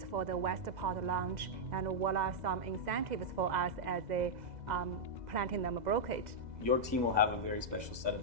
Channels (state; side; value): late; left; 2.0 ms